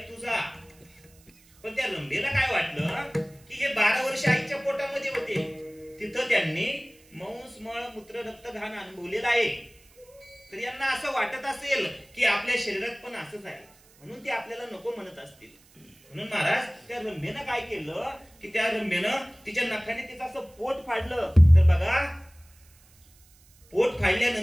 तुझा. पण त्या रंभेला काय वाटलं की हे 12 वर्ष आईच्या पोटामध्ये होते, तिथं त्यांनी मांस मळ मूत्र रक्त घाण अनुभवलेलं आहे, तर यांना असं वाटत असेल की आपल्या शरीरात पण असंच आहे, म्हणून ते आपल्याला नको म्हणत असतील. म्हणून महाराज त्या रंभेनं काय केलं की त्या रंभेनं तिच्या नखाने तिचं असं पोट फाडलं. तर बघा पोट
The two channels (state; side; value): noise; right; hiss, 28 dB below the sound